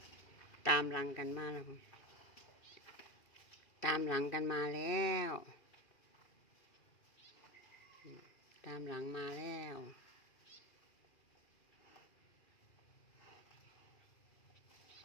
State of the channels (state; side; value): late; right; 2.4 ms